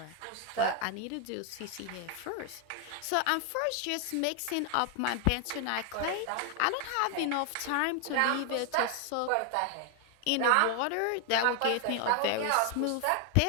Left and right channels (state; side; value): different; both; correlation 0.00